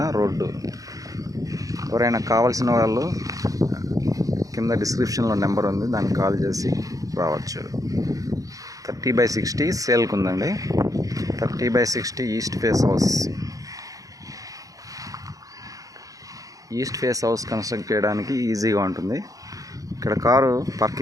రోడ్డు. ఎవరైనా కావాల్సిన వాళ్ళు కింద డిస్క్రిప్షన్లో నెంబర్ ఉంది, దానికి కాల్ చేసి రావచ్చు. 30x60 సేల్కి ఉందండి. 30x60 east face house. East face house construct చేయడానికి ఈజీగా ఉంటుంది. ఇక్కడ కారు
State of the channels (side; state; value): left; late; 0.17 ms